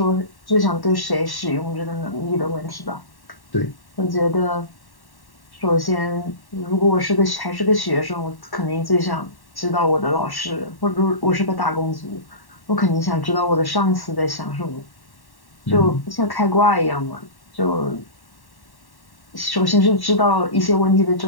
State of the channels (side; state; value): right; late; 1.1 ms